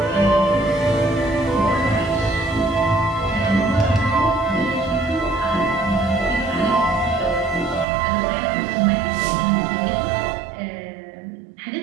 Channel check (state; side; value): drops out; left; at 7.9 s